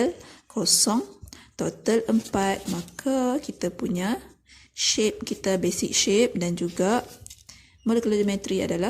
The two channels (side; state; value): both; identical; correlation 1.00